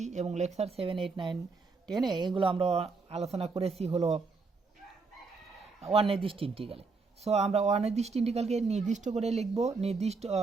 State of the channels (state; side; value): quieter; left; 4.3 dB